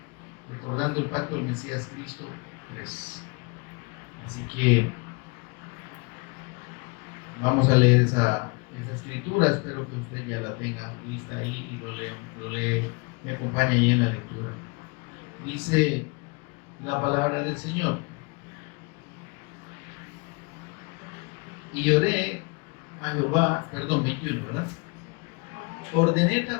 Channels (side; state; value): right; quieter; 30.3 dB